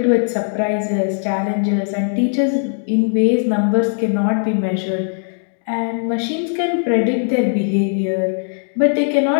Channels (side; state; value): right; silent; 67 dB below the other